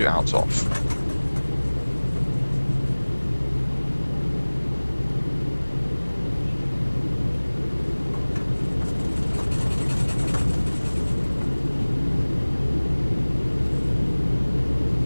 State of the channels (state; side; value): inverted; both; correlation -1.00